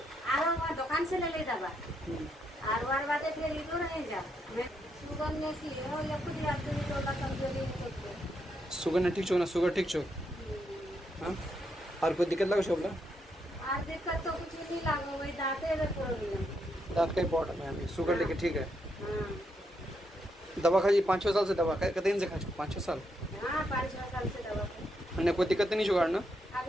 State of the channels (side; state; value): both; normal; correlation 0.79